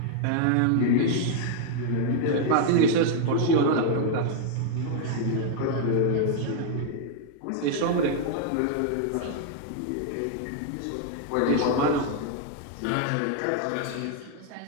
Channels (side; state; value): both; different; correlation 0.00